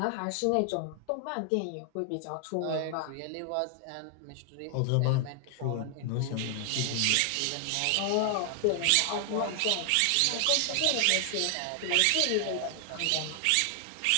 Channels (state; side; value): different; both; correlation 0.00